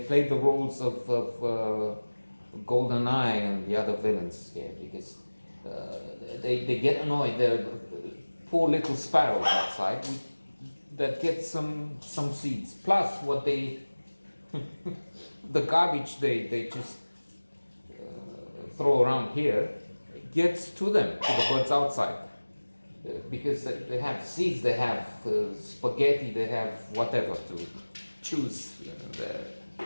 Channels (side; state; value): both; inverted; correlation -1.00